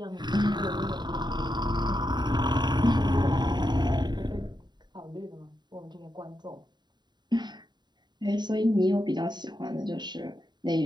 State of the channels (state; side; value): late; left; 0.21 ms